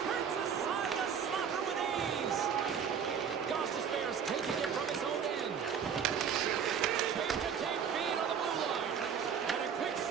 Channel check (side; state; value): left; quieter; 7.4 dB